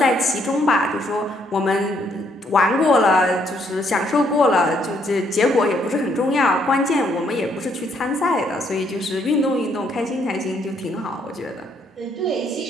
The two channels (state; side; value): normal; both; correlation 0.70